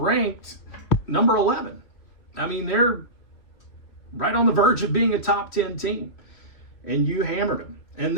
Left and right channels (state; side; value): late; right; 3.0 ms